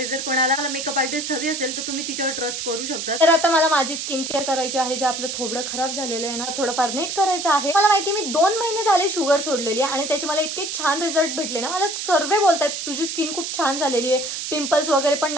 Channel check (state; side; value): noise; right; hiss, 5 dB below the sound